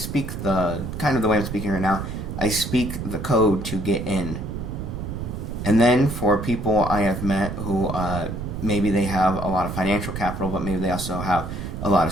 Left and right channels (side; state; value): right; noise; rumble, 6 dB below the sound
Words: the way I'm speaking right now. I speak the code to get in. And then for people I have met who maybe they have a lot of financial capital, but maybe they also have a lot